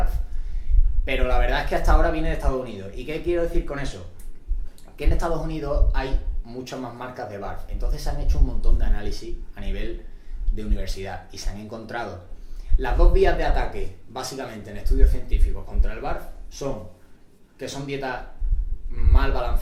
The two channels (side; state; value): both; identical; correlation 1.00